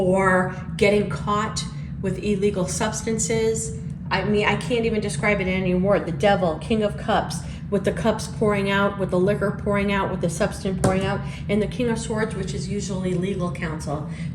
getting caught with illegal substances. I mean, I can't even describe it in any word. The Devil, King of Cups, with the cups pouring out, with the liquor pouring out, with the substance pouring out, and the King of Swords, which is usually legal counsel.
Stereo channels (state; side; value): identical; both; correlation 1.00